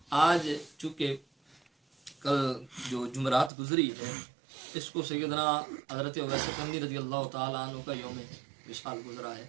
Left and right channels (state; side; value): drops out; left; at 3.5 s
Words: آج چونکہ کل جو جمعرات گزری ہے اس کو سیدنا حضرت اویس قرنی رضی اللہ تعالیٰ عنہ کا یوم وصال گزرا ہے،